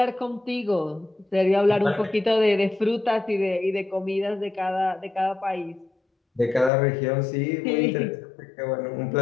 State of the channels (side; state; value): right; drops out; at 6.7 s